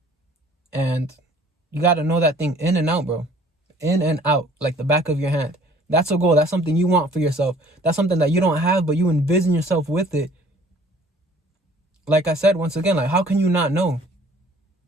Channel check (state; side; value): normal; both; correlation 0.54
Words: And you got to know that thing in and out, bro. In and out, like the back of your hand. That's a goal. That's something you want for yourself. That's something that you don't have, but you envision yourself with it. Like I said, once again, like, how can you not know?